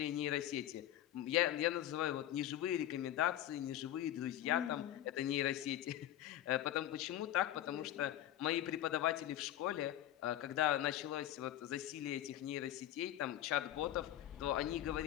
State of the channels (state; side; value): quieter; right; 12.7 dB